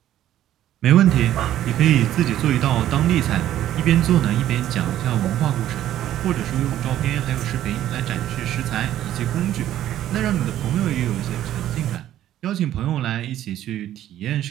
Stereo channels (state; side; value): quieter; left; 12.4 dB